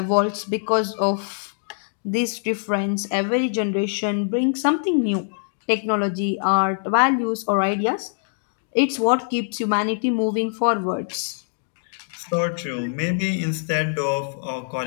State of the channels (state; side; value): silent; right; digital silence